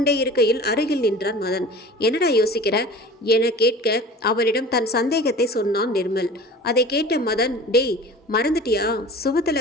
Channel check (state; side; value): normal; both; correlation 0.41